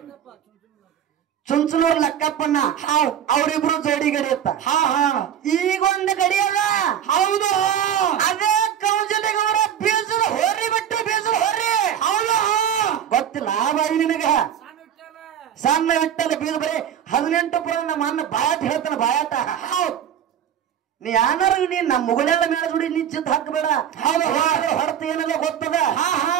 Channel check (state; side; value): quieter; left; 9.5 dB